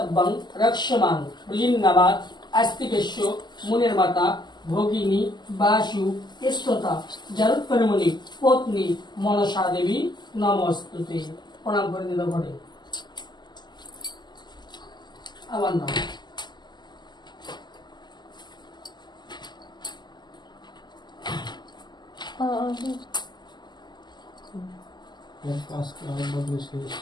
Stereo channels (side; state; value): right; late; 0.21 ms